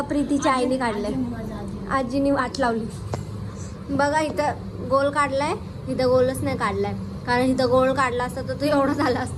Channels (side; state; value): both; identical; correlation 1.00